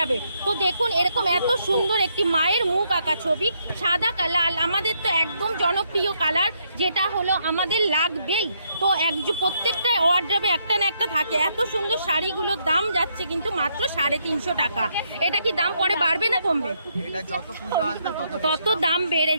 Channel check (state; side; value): inverted; both; correlation -0.74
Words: তো দেখুন এরকম এত সুন্দর একটি মায়ের মুখ আঁকা ছবি, সাদা লাল, আমাদের তো একদম জনপ্রিয় কালার, যেটা হলো আমাদের লাগবেই। তো প্রত্যেকটা ওয়ার্ড্রবে একটা না একটা থাকে। এত সুন্দর শাড়িগুলোর দাম যাচ্ছে কিন্তু মাত্র 350 টাকা। এটা কি দাম পরে বাড়বে না কমবে? এটা যত পুজো আসবে তত দাম বেড়ে